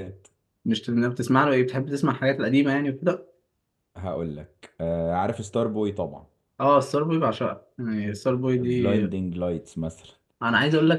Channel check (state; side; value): identical; both; correlation 1.00